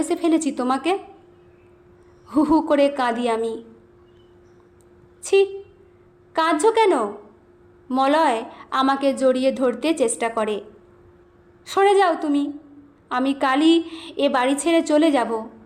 ফেলেছি তোমাকে। হু হু করে কাঁদি আমি। ছি, কাঁদছো কেন? মলয় আমাকে জড়িয়ে ধরতে চেষ্টা করে। সরে যাও তুমি, আমি কালই এ বাড়ি ছেড়ে চলে যাব।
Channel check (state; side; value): identical; both; correlation 1.00